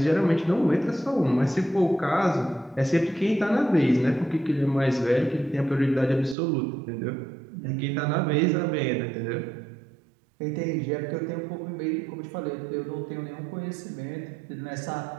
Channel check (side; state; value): left; drops out; at 6.4 s